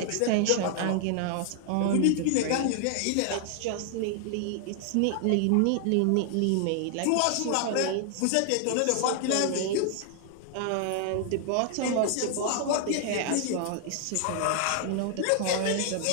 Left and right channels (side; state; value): both; different; correlation 0.00